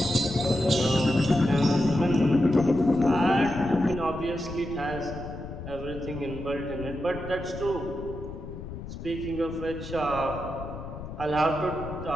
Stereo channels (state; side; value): noise; left; rumble, 10 dB below the sound